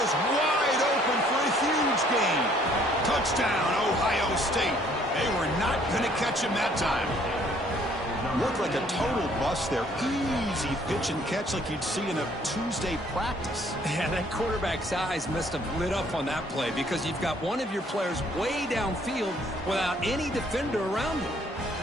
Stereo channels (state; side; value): normal; both; correlation 0.61